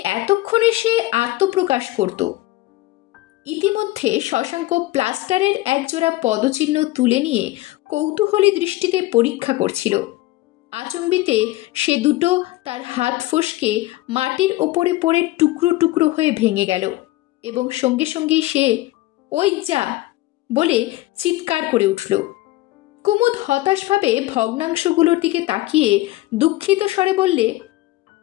এতক্ষণে সে আত্মপ্রকাশ করত। ইতিমধ্যে শশাঙ্ক প্লাস্টারের একজোড়া পদচিহ্ন তুলে নিয়ে কৌতূহলী দৃষ্টিতে পরীক্ষা করছিল। আচম্বিতে সে দুটো তার হাত ফসকে মাটির ওপরে পড়ে টুকরো টুকরো হয়ে ভেঙে গেল এবং সঙ্গে সঙ্গেই সে ওই যা বলে চিৎকার করে উঠল। কুমুদ হতাশভাবে ভগ্নাংশগুলোর দিকে তাকিয়ে দুঃখিত স্বরে বললে,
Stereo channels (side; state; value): right; quieter; 18.1 dB